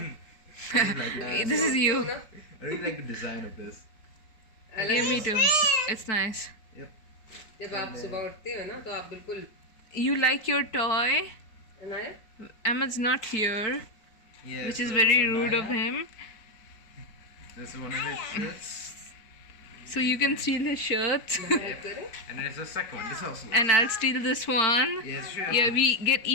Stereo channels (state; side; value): late; right; 4.6 ms